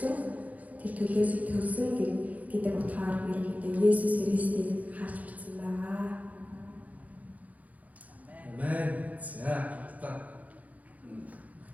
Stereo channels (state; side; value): late; left; 0.074 ms